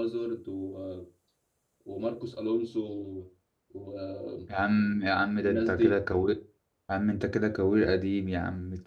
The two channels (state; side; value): identical; both; correlation 1.00